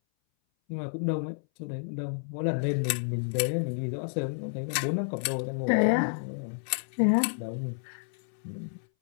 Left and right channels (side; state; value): right; silent; 58 dB below the other